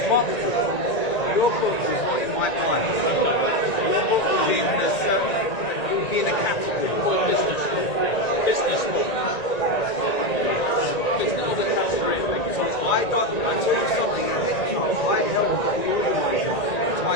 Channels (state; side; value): late; right; 1.9 ms